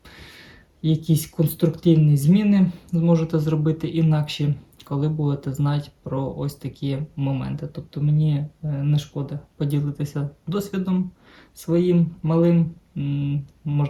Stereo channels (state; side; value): identical; both; correlation 1.00